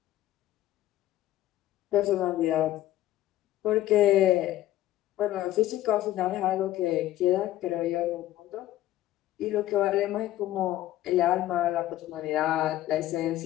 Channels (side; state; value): right; quieter; 14.4 dB